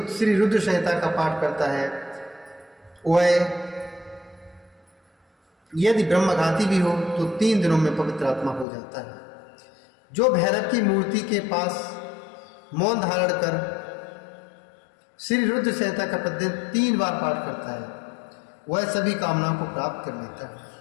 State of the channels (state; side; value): drops out; right; at 8.7 s